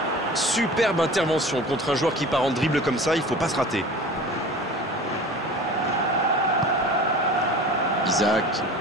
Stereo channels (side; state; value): both; normal; correlation 0.39